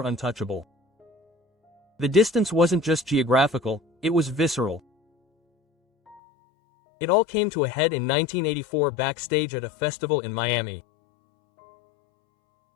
untouchable. The distance wasn't just geographical, it was visceral. It all came to a head in 1984 backstage at a festival in Miami.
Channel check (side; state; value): right; drops out; at 6.2 s